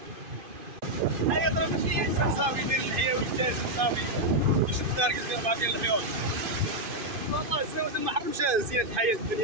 هيا ضرب شي انسان صافي يدير الحياه ويجتاز صافي يشد الدار كيدير بعض ديال الحيوط. والله الزواج ما حرمش زينة الحياه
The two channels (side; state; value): left; late; 2.5 ms